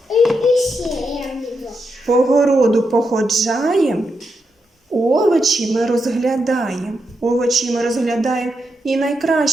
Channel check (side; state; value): both; normal; correlation 0.84